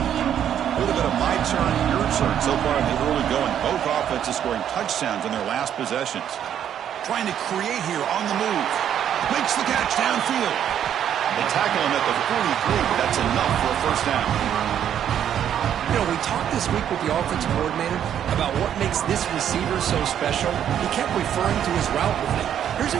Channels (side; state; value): left; quieter; 9.7 dB